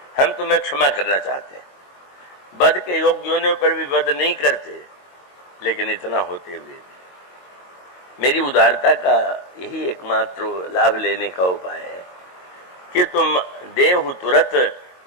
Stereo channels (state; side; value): late; right; 22 ms